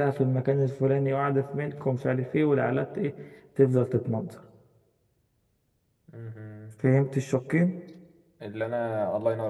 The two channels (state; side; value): identical; both; correlation 1.00